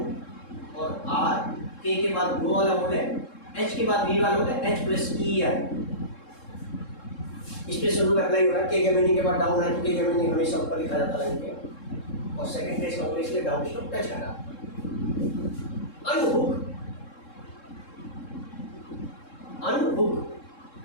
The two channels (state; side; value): late; right; 3.7 ms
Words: और आर के बाद गो वाला बोले, एच के बाद वी वाला बोले, एच प्लस ई आर। इस पे शुरू करना ही होगा। के मीनिंग के बाद डाउन है तो के मीनिंग हमेशा ऊपर लिखा जाता है इनके, और सेकंड प्लेस का बोले इसलिए डाउन स्ट्रोक टच करा। अनहुक, अनहुक